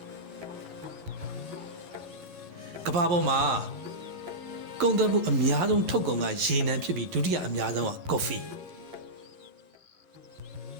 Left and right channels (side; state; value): left; late; 11 ms